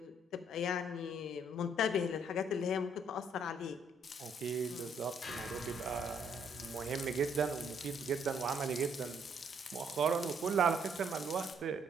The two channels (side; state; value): both; normal; correlation 0.68